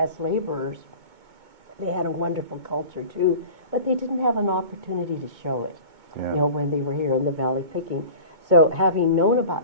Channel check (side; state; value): left; late; 2.2 ms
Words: laborers. They had a wonderful culture too, but they didn't have an opportunity to show it, you know, when they were here in the valley picking. So having known